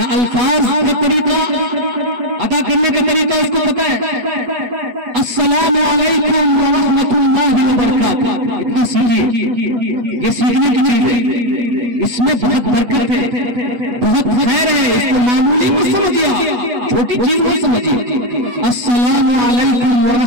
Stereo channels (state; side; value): late; left; 8.2 ms